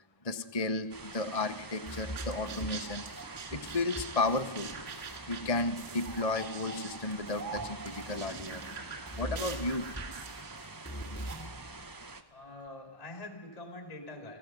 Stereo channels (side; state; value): right; late; 1.1 ms